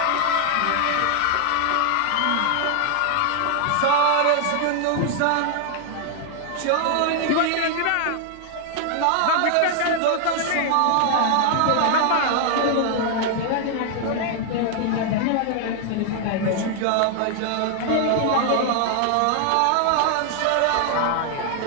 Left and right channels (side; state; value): both; different; correlation 0.00